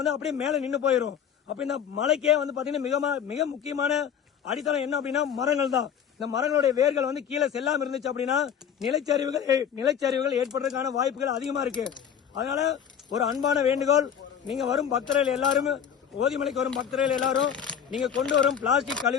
அப்படியே மேல நின்று போயிடும். அப்ப இந்த மலைக்கே பாத்தீங்கன்னா மிக முக்கியமான அடித்தளம் என்ன அப்படின்னா மரங்கள் தான். இந்த மரங்களுடைய வேர்கள் கீழே செல்லாம இருந்துச்சு அப்படின்னா நிலச்சரிவுகள் ஏற்படுறதுக்கான வாய்ப்புகள் அதிகமா இருக்கு. அதனால ஒரு அன்பான வேண்டுகோள், நீங்க வரும் பக்தர்கள் எல்லாரும், ஓதிமலைக்கு வரும் பக்தர்கள் எல்லாரும் நீங்க கொண்டு வரும் பிளாஸ்டிக்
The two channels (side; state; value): right; quieter; 8.3 dB